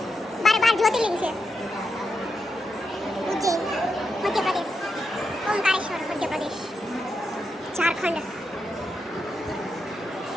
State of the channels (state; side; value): normal; both; correlation 0.85